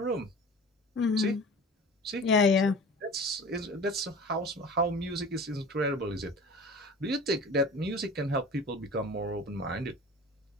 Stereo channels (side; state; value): both; normal; correlation 0.39